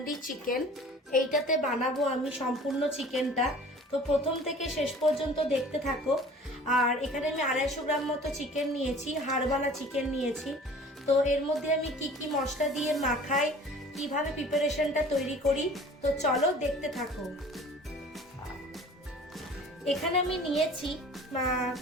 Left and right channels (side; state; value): both; normal; correlation 0.46